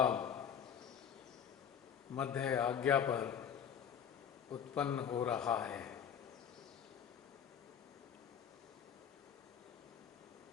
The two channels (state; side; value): quieter; right; 8.3 dB